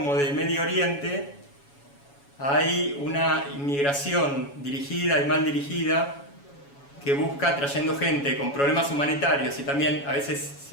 de Medio Oriente, hay una inmigración dirigida y mal dirigida que busca, trayendo gente con problemas humanitarios y también a veces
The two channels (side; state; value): right; late; 7.1 ms